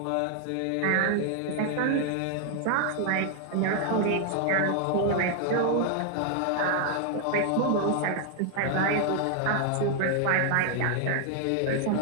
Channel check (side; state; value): both; different; correlation 0.00